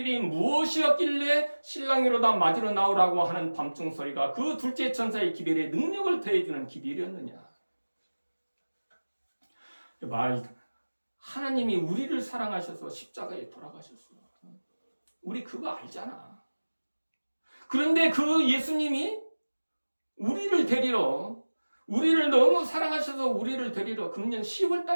무엇이었길래 신랑이로다 맞으러 나오라고 하는 밤중 소리가 그 둘째 천사의 기별에 능력을 더해주는 기별이었느냐? 하나님이 우리를 사랑하셔서 십자가에 돌아가셨어. 우리 그거 알잖아. 그런데 그 예수님이 우리를 너무 사랑하셔서 우리를 데리러 금년 10월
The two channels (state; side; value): inverted; both; correlation -1.00